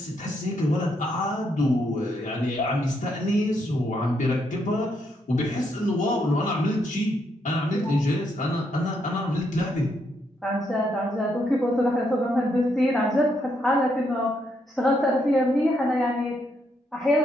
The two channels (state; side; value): normal; both; correlation 0.77